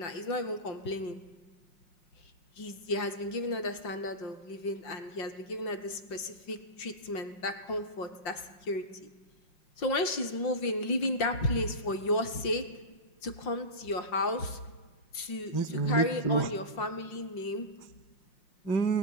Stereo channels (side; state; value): right; late; 5.7 ms